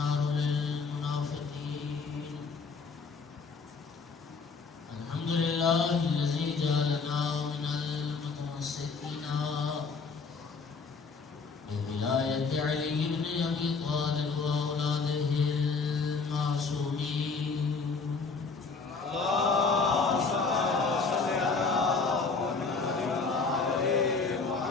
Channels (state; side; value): quieter; right; 4.7 dB